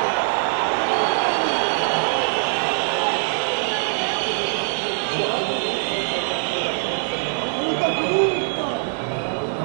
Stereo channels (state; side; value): silent; left; 64 dB below the other